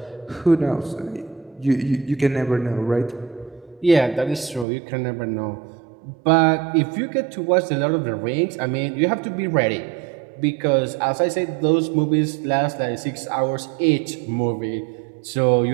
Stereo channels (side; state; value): left; drops out; at 4.7 s